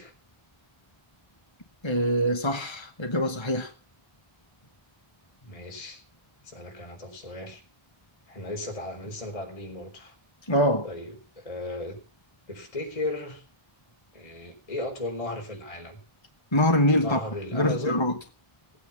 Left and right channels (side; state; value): right; late; 1.3 ms